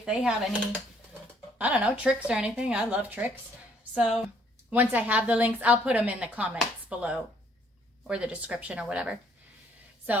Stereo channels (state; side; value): normal; both; correlation 0.65